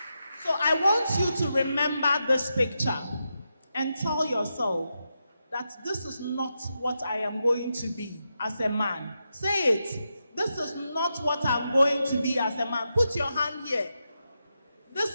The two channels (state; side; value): inverted; both; correlation -0.87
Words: So I want you to remember this picture and tell yourself that this is not what I am going to be as a man. Say it. This is not what I'm going to be as a man. Put your hand here. This